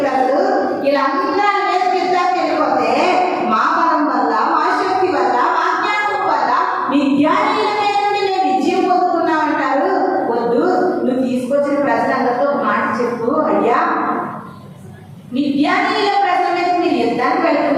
ప్రజలు. వీళ్ళందరూ మీద యుద్ధానికి వెళ్ళిపోతే మా బలం వల్ల, మా శక్తి వల్ల, మా జ్ఞానం వల్ల విద్యానీయుల మీద నుండి మేము విజయం పొందుకున్నామంటారు. వద్దు, నువ్వు తీసుకొచ్చిన ప్రజలందరితో ఒక మాట చెప్పు, అయ్యా విద్యానీయుల ప్రజల మీద మీరు యుద్ధానికి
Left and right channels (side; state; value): both; identical; correlation 1.00